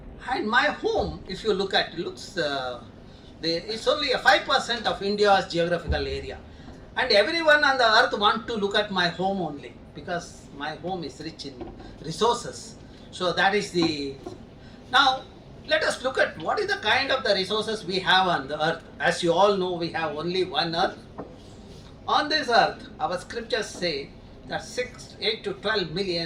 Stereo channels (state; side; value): identical; both; correlation 1.00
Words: and my home, if you look at it, it's only a 5% of India's geographical area. And everyone on the earth wants to look at my home only, because my home is rich in resources. So that is the... Now, let us look at what is the kind of the resources we have on the earth. As you all know, we have only one earth. On this earth, our scriptures say that 8 to 12